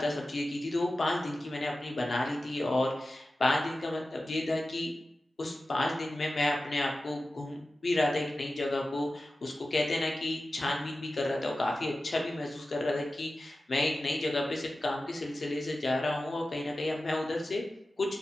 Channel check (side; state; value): both; normal; correlation 0.94